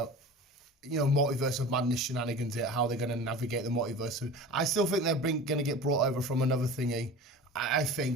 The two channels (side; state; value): both; normal; correlation 0.36